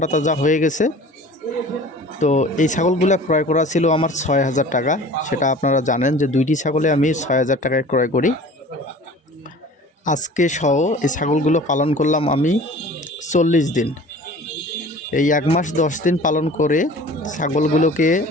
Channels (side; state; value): both; normal; correlation 0.43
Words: তাজা হয়ে গেছে। তো এই ছাগলগুলো ক্রয় করা ছিল আমার ৬,০০০ টাকা। সেটা আপনারা জানেন যে দুইটি ছাগলে আমি ৬,০০০ টাকায় ক্রয় করি। আজকে সহ এই ছাগলগুলো পালন করলাম আমি ৪০ দিন। এই ১ মাস ১০ দিন পালন করে ছাগলগুলোকে